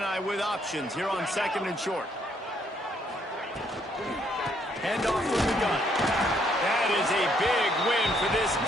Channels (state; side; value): normal; both; correlation 0.70